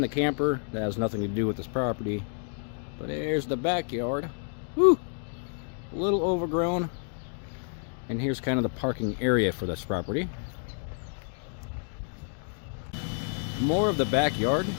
the camper. That has nothing to do with this property. But there's the backyard. Whew! A little overgrown. And here's kind of the parking area for this property. More of the backyard.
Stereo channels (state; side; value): silent; right; 56 dB below the other